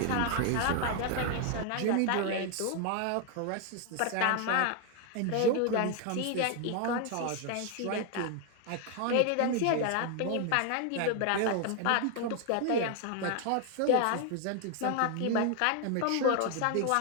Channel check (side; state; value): both; different; correlation 0.01